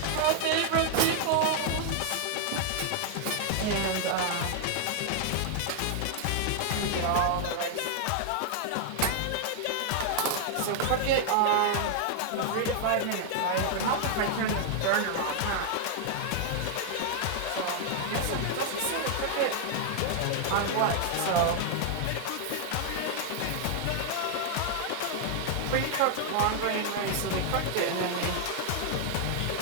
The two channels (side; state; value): both; different; correlation 0.00